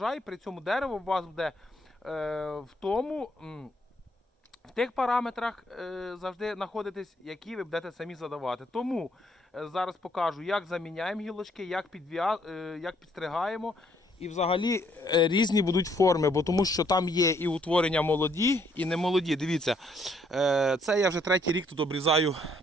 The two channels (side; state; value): both; normal; correlation 0.68